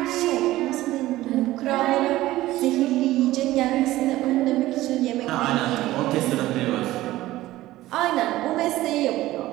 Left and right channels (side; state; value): left; quieter; 16.4 dB